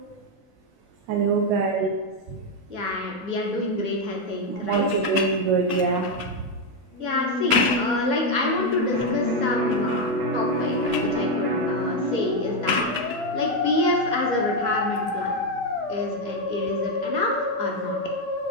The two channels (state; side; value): late; left; 12 ms